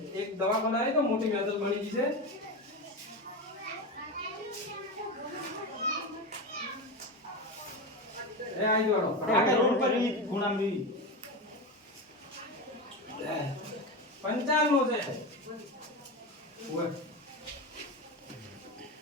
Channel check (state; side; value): normal; both; correlation 0.20